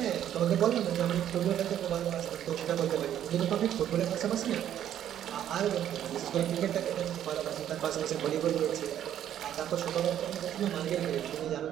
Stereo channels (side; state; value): left; quieter; 10.7 dB